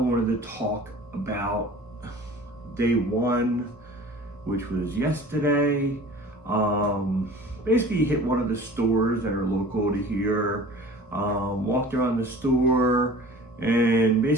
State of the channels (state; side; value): normal; both; correlation 0.43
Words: to talk about day one, which was yesterday. Basically hit one of the stores that are local to here, walked around the store, and